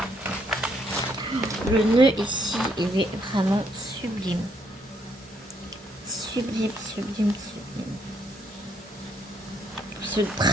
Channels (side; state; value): both; normal; correlation 0.72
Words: Le nœud ici, il est vraiment sublime. Sublime. Se